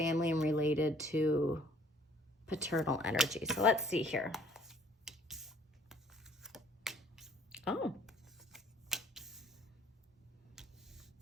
and related to paternal energy. So let's see here. Oh.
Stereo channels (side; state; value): both; normal; correlation 0.57